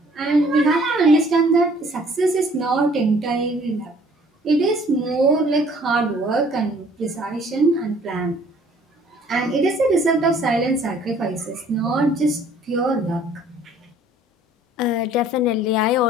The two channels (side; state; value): both; normal; correlation 0.56